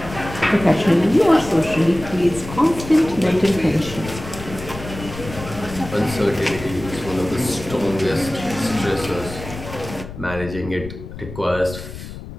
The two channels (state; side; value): noise; left; rumble, 12 dB below the sound